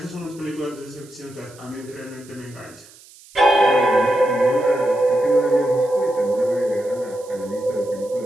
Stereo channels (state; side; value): noise; right; hiss, 23 dB below the sound